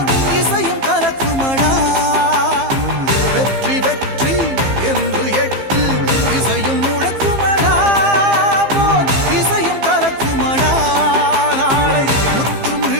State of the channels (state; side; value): late; left; 15 ms